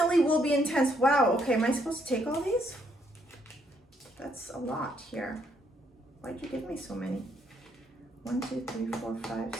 will be intense. Wow, okay, am I supposed to take all these? That's a lot here. Why'd you give me so many? 1, 2, 3, 4, 5,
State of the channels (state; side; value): normal; both; correlation 0.72